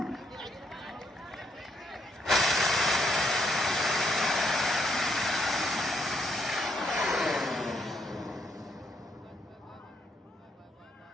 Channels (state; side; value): normal; both; correlation 0.74